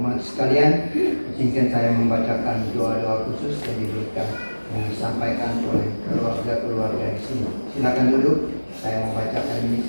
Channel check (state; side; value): inverted; both; correlation -1.00